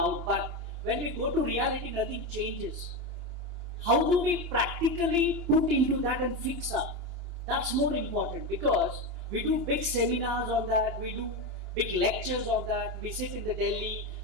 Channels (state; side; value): late; left; 2.9 ms